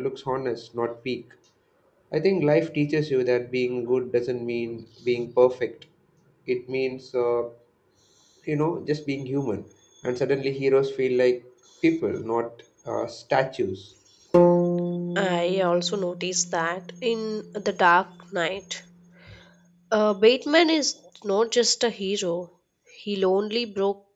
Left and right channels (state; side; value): identical; both; correlation 1.00